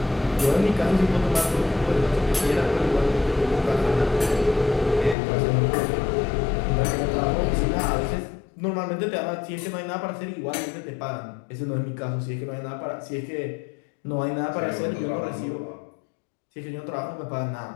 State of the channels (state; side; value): drops out; right; at 5.2 s